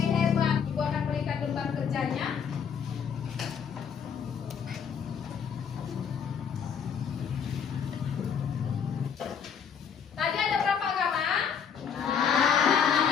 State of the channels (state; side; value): quieter; right; 7.2 dB